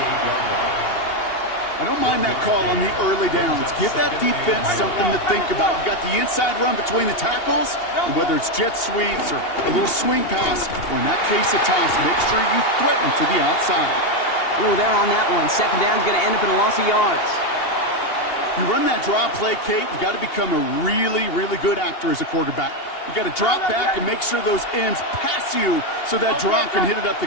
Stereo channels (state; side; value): late; right; 2.8 ms